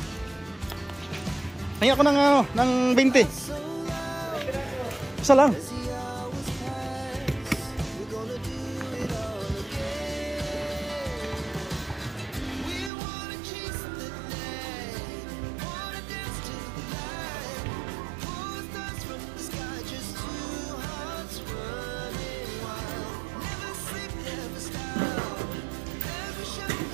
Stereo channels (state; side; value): drops out; left; at 12.9 s